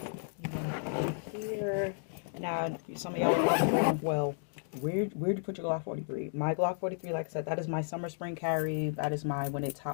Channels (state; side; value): silent; right; digital silence